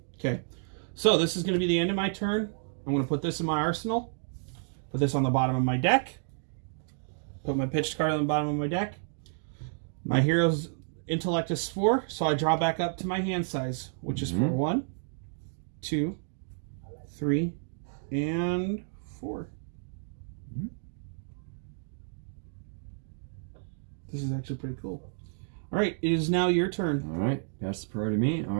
Okay, so this is going to be the end of my turn. I'm going to put this in my arsenal. Put this on the bottom of my deck. Put my pitched card on the bottom of my deck. My hero's intellect is 4, so I draw back up to my hand size, which is for 1, 2, 3, and 4. This is actually pretty cool. All right, it is now your turn. All right, pass the priority to me. All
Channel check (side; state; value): left; silent; digital silence